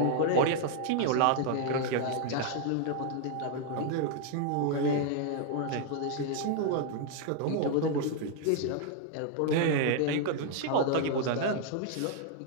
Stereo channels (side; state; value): both; different; correlation 0.00